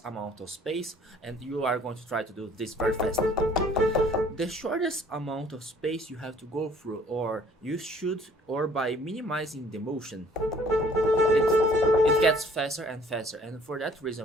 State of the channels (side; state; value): both; normal; correlation 0.56